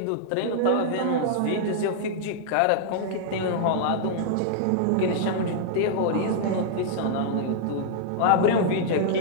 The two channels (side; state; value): both; different; correlation -0.01